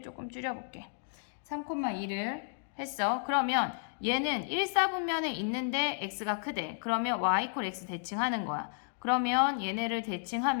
조금 줄여볼게. 3,2를 했어. 그러면 얘는 1사분면에 있는데 x가 크대. 그러면 y = x 대칭하는 거야. 그러면 얘네를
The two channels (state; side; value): silent; right; digital silence